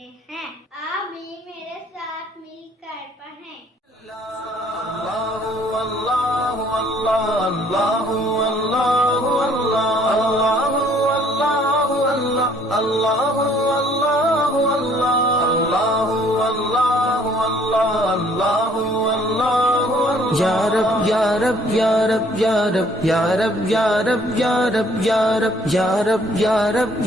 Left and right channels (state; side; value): normal; both; correlation 0.61